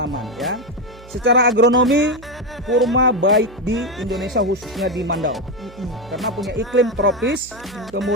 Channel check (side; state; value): right; noise; hum, 21 dB below the sound